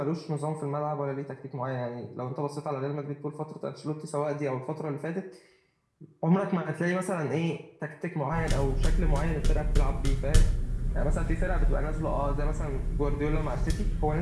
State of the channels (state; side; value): identical; both; correlation 1.00